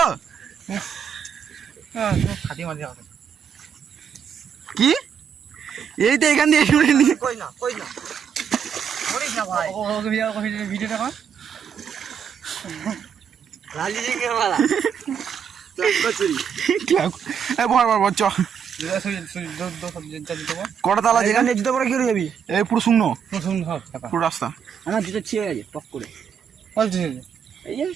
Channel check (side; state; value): left; quieter; 7.6 dB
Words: কি? এই তো এখান দিয়ে কটা তালা যেখানে জুতো পরে কি যাবি? এই পুরো শূন্য পুরো রাস্তা। আমার জুতো ছিঁড়ে গেছে পক করে। এই যে